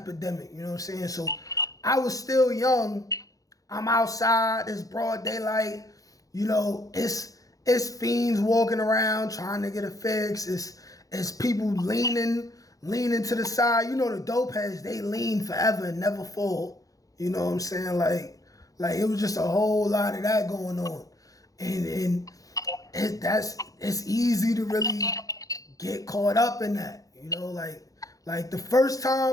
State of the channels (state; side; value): late; right; 0.17 ms